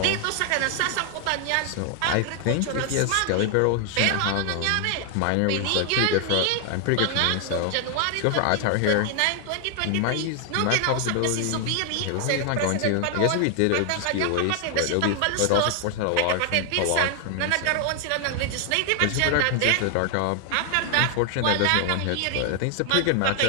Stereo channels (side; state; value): both; different; correlation 0.00